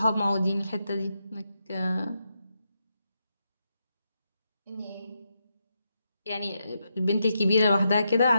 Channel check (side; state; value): both; inverted; correlation -0.84